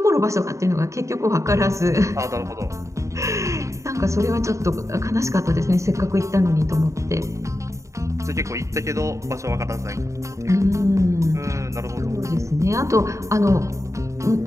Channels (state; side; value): late; left; 0.15 ms